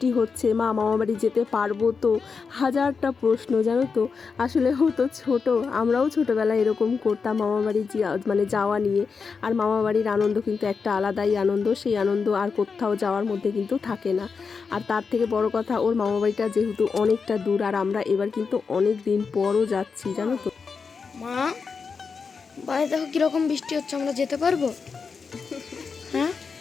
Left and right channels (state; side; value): quieter; right; 5.3 dB